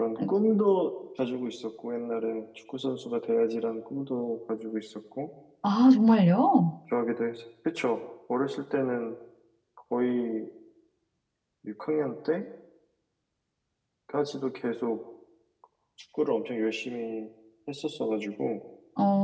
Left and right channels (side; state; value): both; identical; correlation 1.00